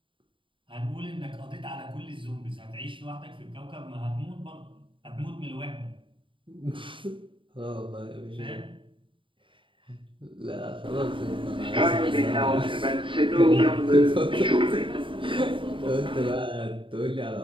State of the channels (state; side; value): late; left; 0.25 ms